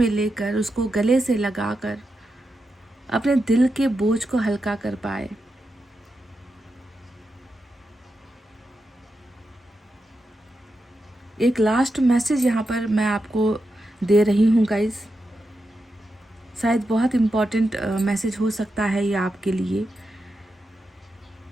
लेकर, उसको गले से लगाकर अपने दिल के बोझ को हल्का कर पाए। एक लास्ट मैसेज यहाँ पर मैं आपको दे रही हूँ गाइस। शायद बहुत इम्पोर्टेंट मैसेज हो सकता है ये आपके लिए।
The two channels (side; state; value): both; normal; correlation 0.88